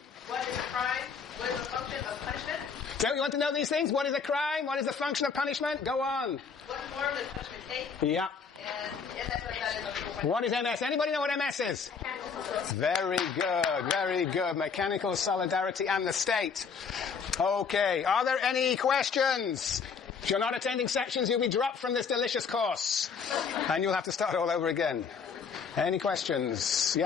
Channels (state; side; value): quieter; right; 5.9 dB